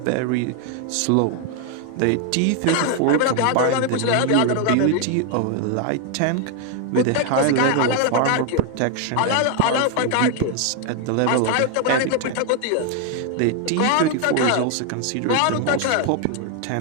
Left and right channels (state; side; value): different; both; correlation 0.01